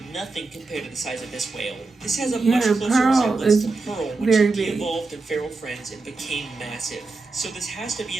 nothing compared to the size of this whale. This has a much closer Pearl resemblance is to Pearl when very she big. de-evolved in Feral Friends and became massive. So this has to be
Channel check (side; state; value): left; quieter; 3.7 dB